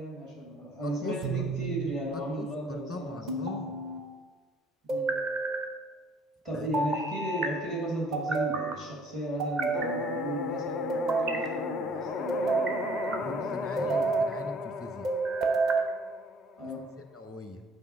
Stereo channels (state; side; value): normal; both; correlation 0.56